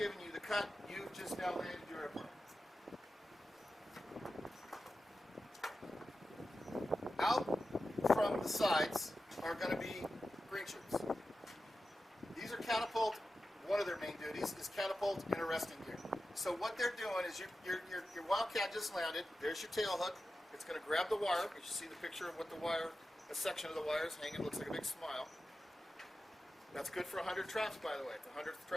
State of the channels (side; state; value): both; normal; correlation 0.92